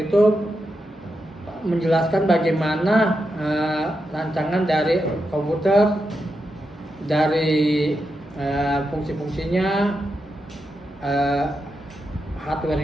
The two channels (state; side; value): normal; both; correlation 0.86